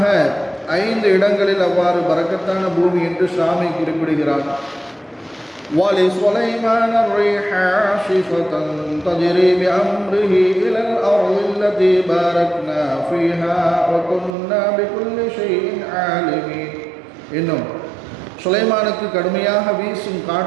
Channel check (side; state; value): left; drops out; at 14.4 s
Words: 5 இடங்களில் அவ்வாறு பரக்கத்தான பூமி என்று ஷாமை குறிப்பிடுகிறார். وَلِسُلَيْمَانَ الرِّيحَ عَاصِفَةً تَجْرِي بِأَمْرِهِ إِلَى الْأَرْضِ الَّتِي بَارَكْنَا فِيهَا وَكُنَّا بِكُلِّ شَيْءٍ عَالِمِينَ. இன்னும் சுலைமானுக்கு கடுமையாக வீசும்